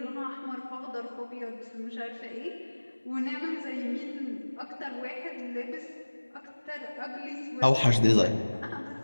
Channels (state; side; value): inverted; both; correlation -1.00